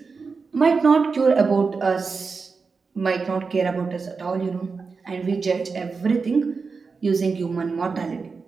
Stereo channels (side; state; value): left; quieter; 4.8 dB